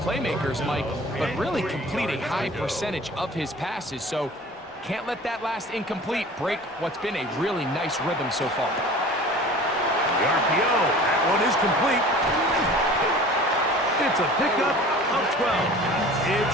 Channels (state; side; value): normal; both; correlation 0.43